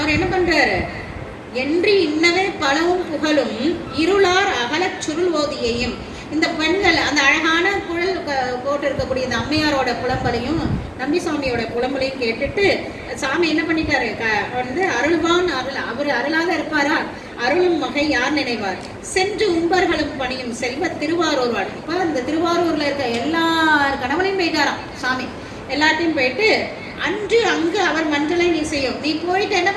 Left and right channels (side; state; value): both; identical; correlation 1.00